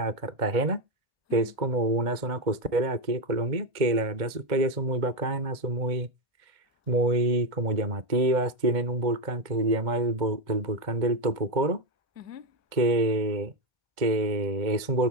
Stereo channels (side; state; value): left; late; 2.1 ms